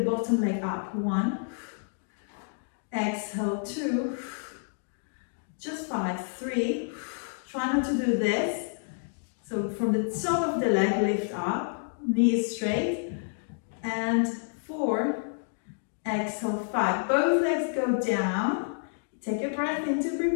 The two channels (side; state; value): right; silent; digital silence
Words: bottom leg up. 1. Exhale, 2. Just 5. 3. Try not to do this. So from the top of the leg, lift up. Knees straight. And 4. Exhale, 5. Both legs go down. Take a breath in to